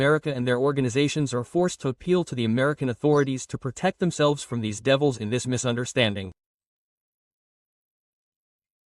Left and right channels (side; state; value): both; identical; correlation 1.00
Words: and their organizations are forced to appeal to the American authorities to protect themselves from these devils in this misunderstanding.